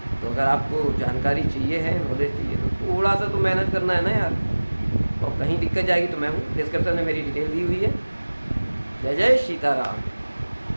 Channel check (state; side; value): inverted; both; correlation -1.00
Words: तो अगर आपको जानकारी चाहिए है, नॉलेज चाहिए, तो थोड़ा सा तो मेहनत करना है ना यार, और कहीं दिक्कत जाएगी तो मैं हूँ, डिस्क्रिप्शन में मेरी डिटेल दी हुई है। जय जय सीताराम।